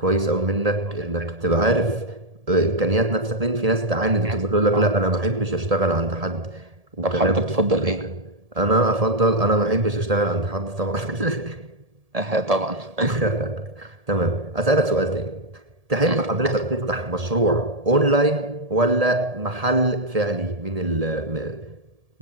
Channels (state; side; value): late; left; 1.7 ms